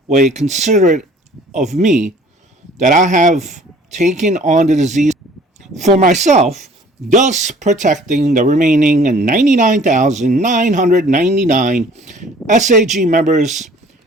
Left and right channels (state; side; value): normal; both; correlation 0.53